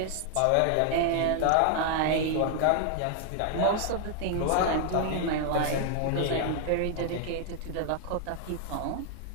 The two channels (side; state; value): both; different; correlation 0.00